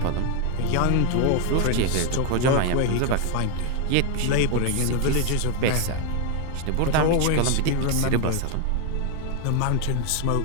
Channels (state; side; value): different; both; correlation 0.01